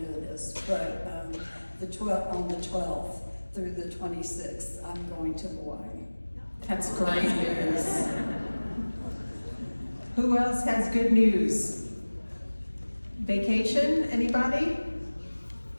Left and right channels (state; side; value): inverted; both; correlation -1.00